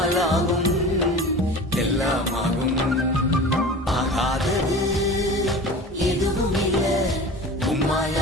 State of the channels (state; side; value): normal; both; correlation 0.36